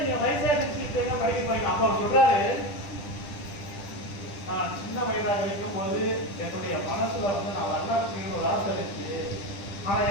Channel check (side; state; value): right; late; 10 ms